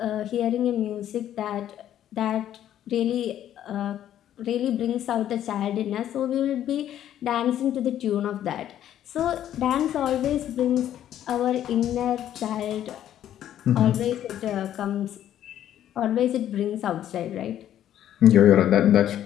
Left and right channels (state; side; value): quieter; right; 11.3 dB